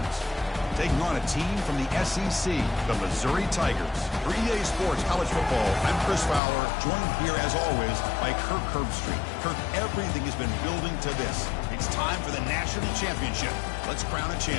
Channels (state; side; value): drops out; right; at 6.4 s